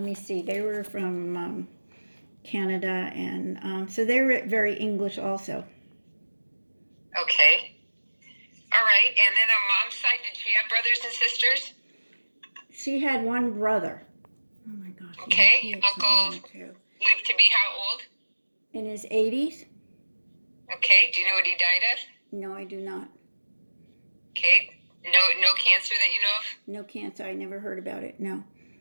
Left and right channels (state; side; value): inverted; both; correlation -1.00